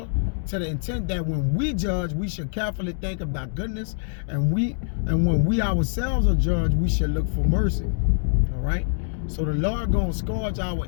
to the intent that when we judge, we should carefully think of thy goodness, and when we ourselves are judged, we should look for mercy. All right? So the Lord gonna scourge our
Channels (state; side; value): silent; right; digital silence